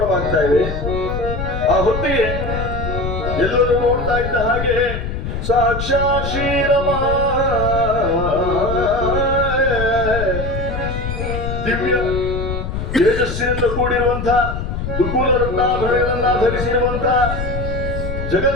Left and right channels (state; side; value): noise; left; rumble, 5 dB below the sound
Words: ಇವೆ. ಆ ಹೊತ್ತಿಗೆ ಎಲ್ಲರೂ ನೋಡ್ತಾ ಇದ್ದ ಹಾಗೆ ಸಾಕ್ಷಾತ್ ಶ್ರೀರಮ ದಿವ್ಯ ತೇಜಸ್ಸಿನಿಂದ ಕೂಡಿರುವಂತಹ ದುಕೂಲ ರತ್ನಾಭರಣಗಳನ್ನ ಧರಿಸಿರುವಂತಹ